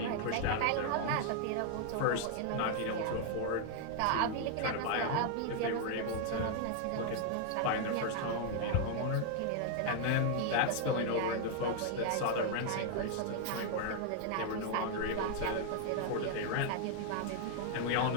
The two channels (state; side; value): different; both; correlation 0.00